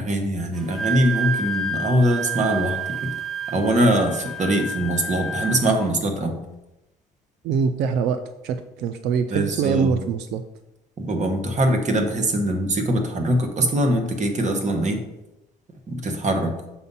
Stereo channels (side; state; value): both; normal; correlation 0.61